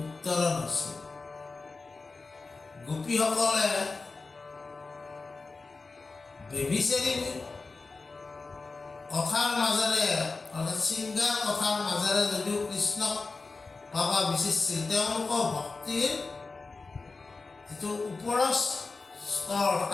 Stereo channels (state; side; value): quieter; right; 3.9 dB